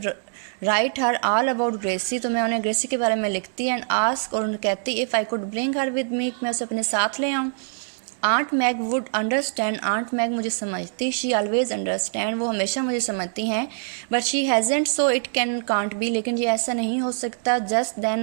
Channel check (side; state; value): left; silent; digital silence